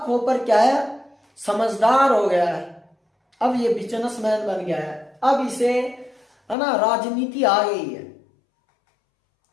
कॉपर क्या है, समझदार हो गया है, अब ये बिजनेसमैन बन गया है। अब इसे है ना, राजनीति आ गई है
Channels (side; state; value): right; drops out; at 6.6 s